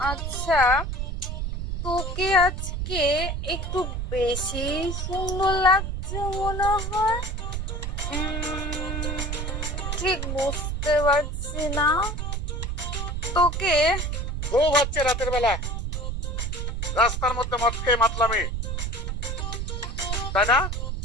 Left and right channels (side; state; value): right; noise; rumble, 3 dB below the sound